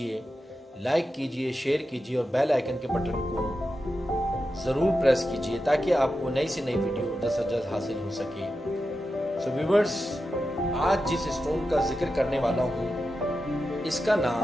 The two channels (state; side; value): normal; both; correlation 0.90